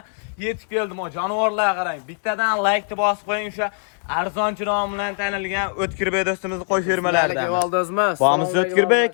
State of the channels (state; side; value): silent; right; 64 dB below the other